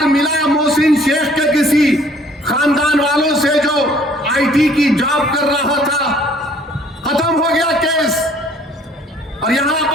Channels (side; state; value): both; normal; correlation 0.57